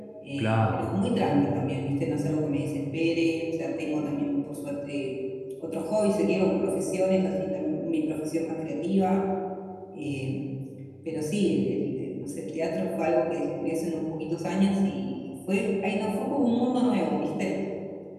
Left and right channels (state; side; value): identical; both; correlation 1.00